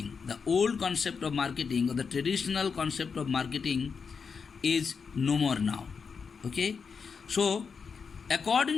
The old concept of marketing or the traditional concept of marketing is no more now. Okay? So,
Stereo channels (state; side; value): quieter; right; 5.7 dB